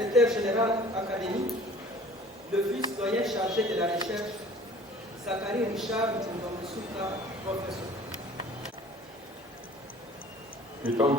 général académique, le vice-doyen chargé de la recherche, Zachary Richard Koumba Moussouka, professeur. Étant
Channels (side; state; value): both; normal; correlation 0.48